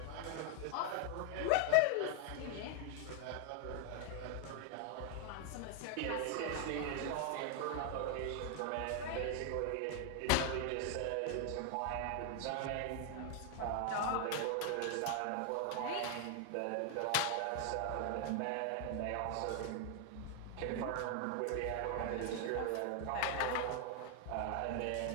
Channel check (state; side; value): different; both; correlation 0.00